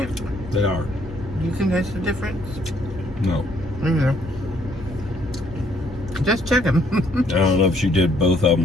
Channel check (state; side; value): normal; both; correlation 0.67